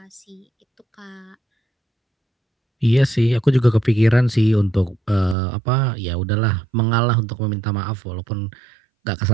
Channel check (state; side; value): drops out; left; at 5.4 s